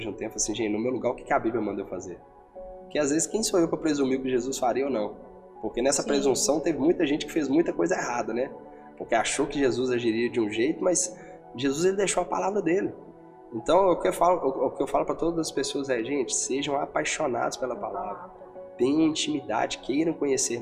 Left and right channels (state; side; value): identical; both; correlation 1.00